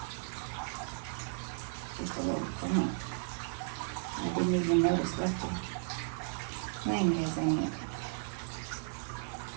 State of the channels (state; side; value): silent; left; digital silence